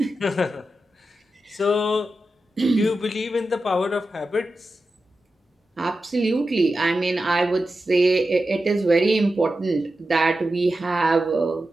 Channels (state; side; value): normal; both; correlation 0.91